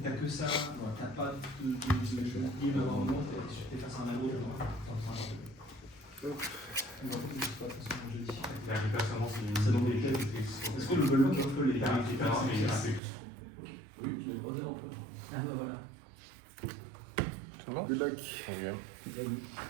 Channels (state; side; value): drops out; left; at 13.0 s